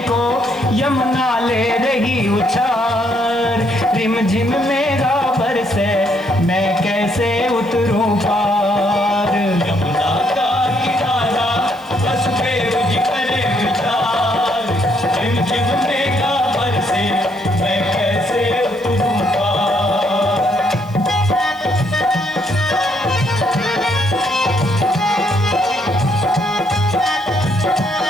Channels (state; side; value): noise; right; hiss, 27 dB below the sound